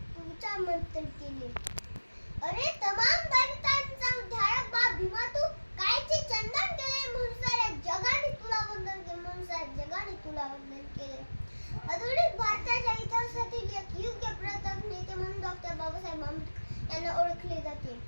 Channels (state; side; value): inverted; both; correlation -1.00